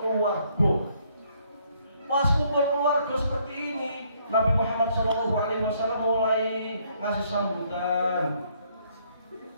keluarga. Pas kumpul keluarga seperti ini, Nabi Muhammad SAW mulai ngasih sambutan,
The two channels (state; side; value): inverted; both; correlation -0.68